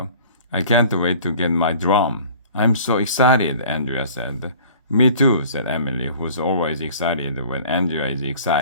I can't wait to get my drum. I'm so excited, Andrea said. Me too, said Emily, who's always excited when Andrea is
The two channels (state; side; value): inverted; both; correlation -0.47